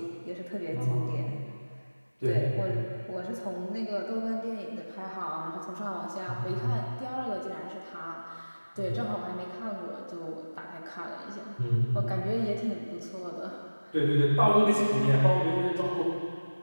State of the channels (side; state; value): both; inverted; correlation -1.00